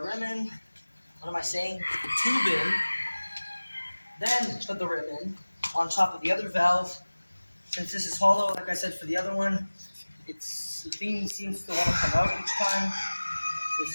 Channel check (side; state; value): both; inverted; correlation -1.00